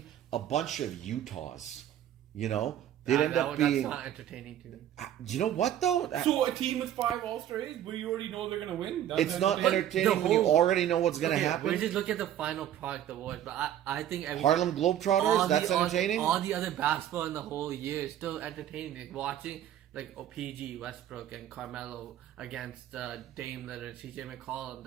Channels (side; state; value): left; quieter; 11.3 dB